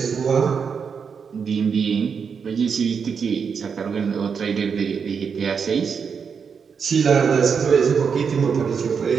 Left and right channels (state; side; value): quieter; left; 6.3 dB